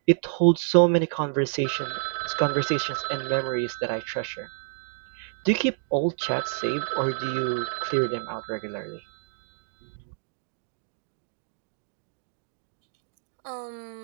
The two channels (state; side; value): silent; left; digital silence